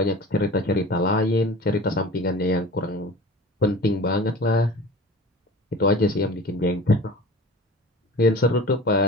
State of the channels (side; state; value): both; normal; correlation 0.38